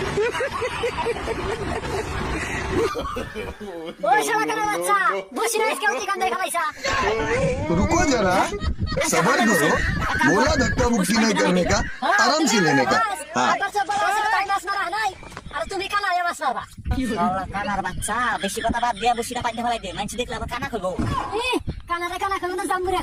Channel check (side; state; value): both; identical; correlation 1.00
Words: ওই শালা কানা বাচ্চা বসি না আজকে ওই কান্দায় ফেলাইছা रुको जरा सबर करो बोला धक्का मुक्की नहीं करने का आराम से लेने का हाँ আবার সব বড় আছে তাই মাছ মারা নাই আর তুমি কানা এ মাছ মারবা শালা কানার বাচ্চা বেশি কথা বাদ দিয়া বসিটা পাইতে ফেলাই দে মানুষ দেখলে আবার কানা করবো কানারে কানা কইব না জাম্বুরিয়া